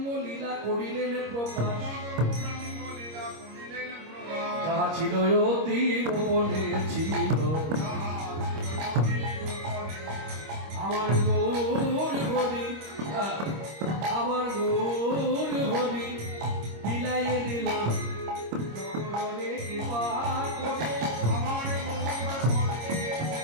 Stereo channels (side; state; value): left; late; 25 ms